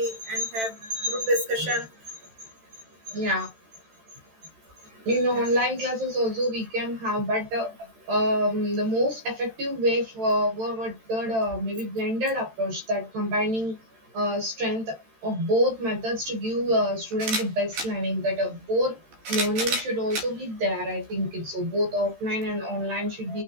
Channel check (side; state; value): left; late; 13 ms